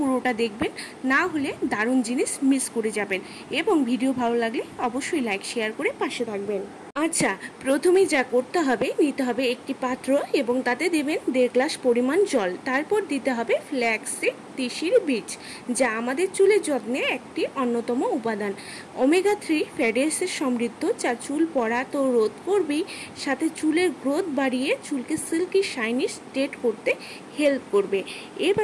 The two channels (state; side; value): identical; both; correlation 1.00